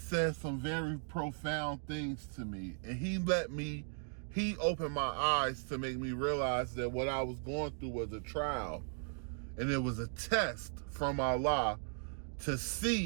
some very profound things to me, and he opened my eyes to make me realize that what I was going through was a trial, and it was a test from Allah to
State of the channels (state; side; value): silent; left; 53 dB below the other